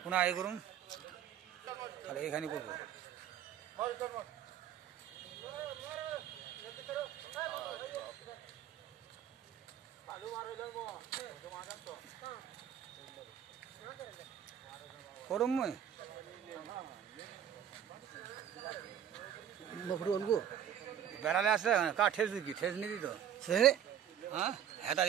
पुन्हा हे करून अरे एखादी करतो। করম মই বেড়ালে আসলে কা ঠেস দিকি ঠেস নি দিত হ্যাঁ হেতা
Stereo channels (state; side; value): quieter; left; 9.7 dB